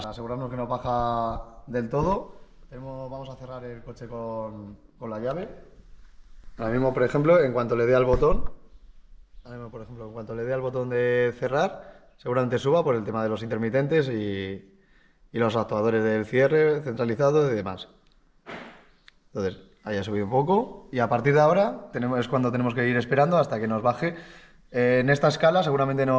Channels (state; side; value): identical; both; correlation 1.00